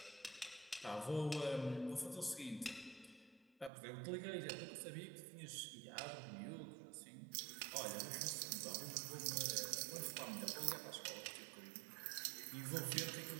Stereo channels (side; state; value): left; drops out; at 3.7 s